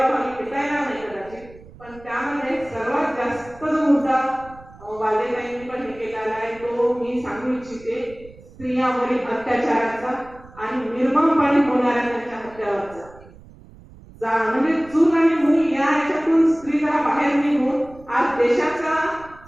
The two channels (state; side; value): noise; right; rumble, 22 dB below the sound